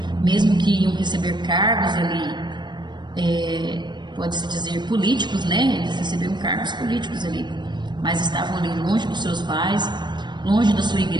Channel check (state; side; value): late; left; 0.22 ms